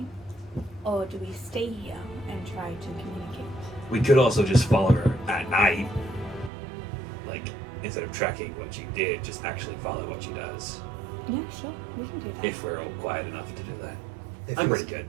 Or do we stay here and try to communicate? We could also just follow her at night. Like, instead of tracking what she did, just actually follow what she does. Yeah, sure, we can do that. If we're all quiet enough to do that. If I'm you're- pretty good.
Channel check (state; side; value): drops out; left; at 6.5 s